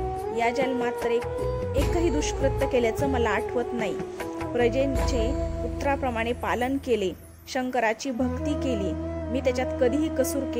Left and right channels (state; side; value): identical; both; correlation 1.00